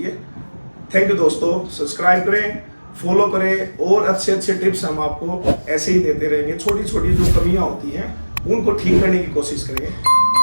थैंक यू दोस्तों, सब्सक्राइब करें, फॉलो करें, और अच्छे अच्छे टिप्स हम आपको ऐसे ही देते रहेंगे। छोटी छोटी जो कमियां होती हैं उनको ठीक करने की कोशिश करेंगे।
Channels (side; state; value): both; inverted; correlation -1.00